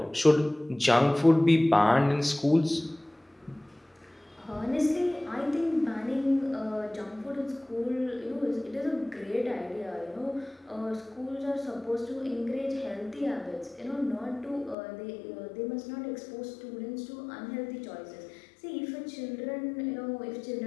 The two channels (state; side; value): drops out; right; at 14.8 s